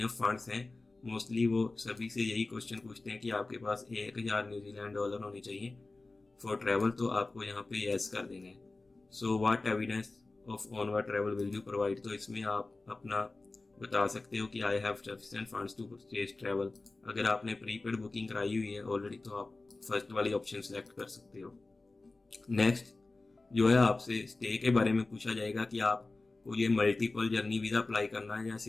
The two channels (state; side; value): quieter; right; 3.3 dB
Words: फंड्स हैं, मोस्टली वो सभी से यही क्वेश्चन पूछते हैं कि आपके पास 1000 न्यूजीलैंड डॉलर होने चाहिए फॉर ट्रैवल, तो आपको यहाँ पे येस कर देना है। So what evidence of onward travel will you provide, तो इसमें आप अपना बता सकते हो कि I have sufficient funds to purchase travel. अगर आपने प्रीपेड बुकिंग कराई हुई है ऑलरेडी तो आप फर्स्ट वाली ऑप्शन सेलेक्ट कर सकते हो। नेक्स्ट जो है आपसे स्टे के बारे में पूछा जाएगा कि आपको ये मल्टीपल जर्नी वीज़ा अप्लाई करना है या